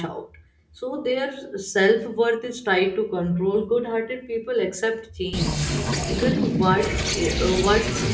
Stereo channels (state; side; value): identical; both; correlation 1.00